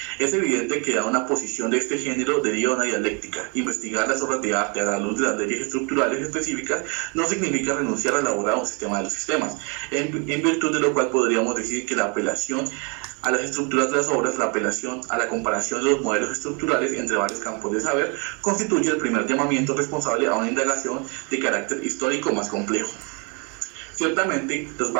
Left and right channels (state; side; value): quieter; left; 33.7 dB